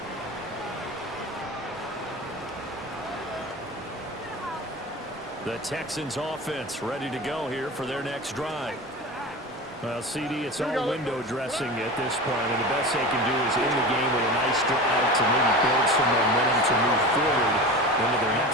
The Texans offense ready to go here for their next drive. Well, CD, it's all window dressing at this point, and the best they can do is end the game with a nice drive to maybe build some momentum to move forward into their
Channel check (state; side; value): normal; both; correlation 0.30